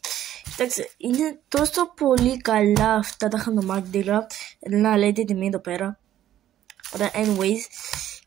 Κοιτάξτε, είναι τόσο πολύ καλά αυτά τα χαντομάρκετινγκ. Να λέτε τη τιμή εδώ πέρα. Ωραία, anyways.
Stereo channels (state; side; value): quieter; left; 12.0 dB